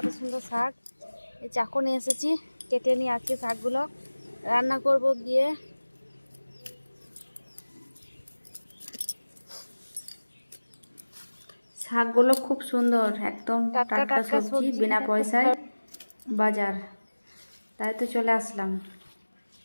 সুন্দর শাক, এই চাকু নিয়ে এসেছি, কেটে নিয়ে আজকে শাকগুলো রান্না করব গিয়ে। শাকগুলো খুব সুন্দর, একদম টাটকা সবজি, বিনা পয়সায় বাজার, তাই তো চলে আসলাম।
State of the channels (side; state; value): both; inverted; correlation -1.00